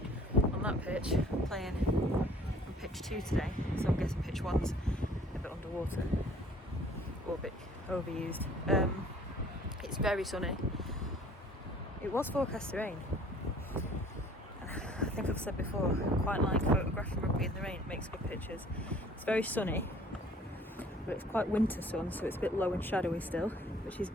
on that pitch. I'm playing on pitch 2 today, so I'm guessing pitch 1's a bit underwater or a bit overused. It's very sunny. It was forecast to rain. I think I've said before, I quite like photographing rugby in the rain. It makes good pictures. It's very sunny, but it's quite winter sun, so it's a bit low and shadowy still, which is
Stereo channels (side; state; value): both; normal; correlation 0.54